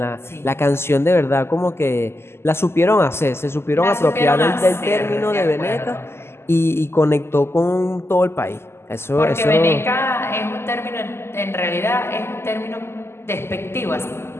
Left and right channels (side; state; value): right; late; 0.12 ms